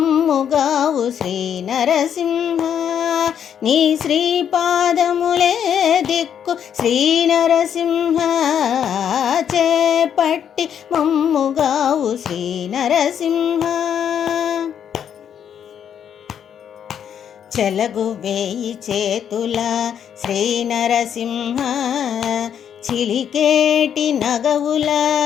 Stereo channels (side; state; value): right; quieter; 8.7 dB